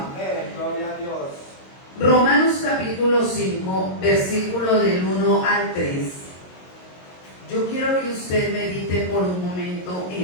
Romanos capítulo 5, versículo del 1 al 3. Yo quiero que usted medite por un momento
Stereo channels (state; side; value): late; right; 22 ms